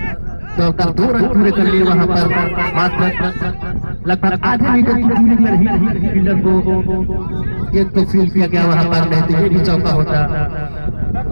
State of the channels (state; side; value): inverted; both; correlation -1.00